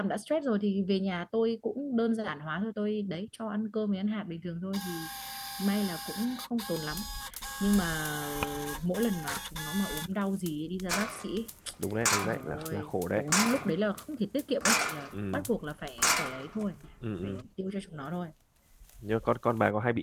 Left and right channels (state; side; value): identical; both; correlation 1.00